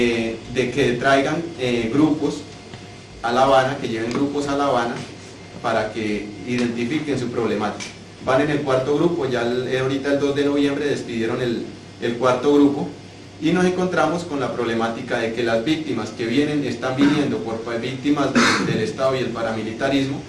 que traigan grupos a La Habana, que lleven grupos a La Habana para que identifiquen su problemática. Van en el 4.º grupo, ya ahorita el 2 de noviembre despidieron el 4.º grupo, y nos encontramos con la problemática de que las víctimas que están viniendo por víctimas del Estado y el paramilitarismo,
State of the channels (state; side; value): identical; both; correlation 1.00